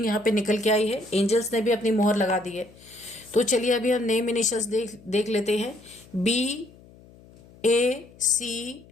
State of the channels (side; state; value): left; noise; hum, 24 dB below the sound